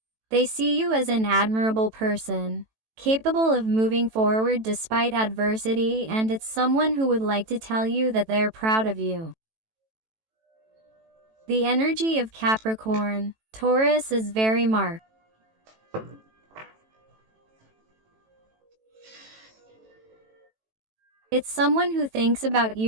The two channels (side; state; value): left; late; 18 ms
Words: They see you as an admirable person, capable of moving forward despite adversity, and it's someone who would like to tell you that they're proud of you. The energy of Capricorn, Taurus is very marked. It's someone who thinks about